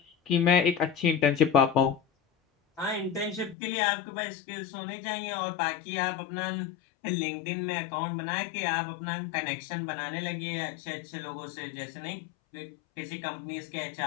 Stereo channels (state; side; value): drops out; right; at 3.6 s